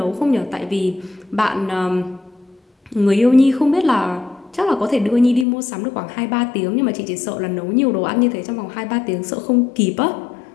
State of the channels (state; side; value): drops out; right; at 5.5 s